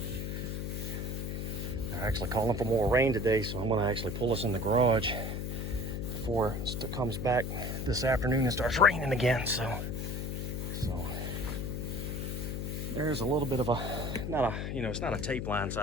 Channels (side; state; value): left; noise; hum, 3 dB below the sound